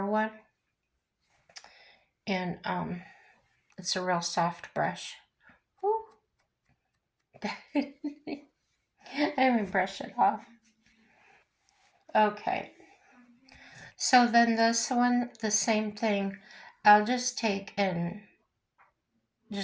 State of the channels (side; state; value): both; identical; correlation 1.00